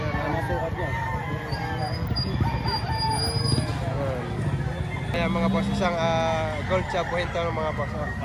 Ang masukat niya. Ayan mga boss, isang gold chop buhinto ng mga boss.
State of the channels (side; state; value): both; identical; correlation 1.00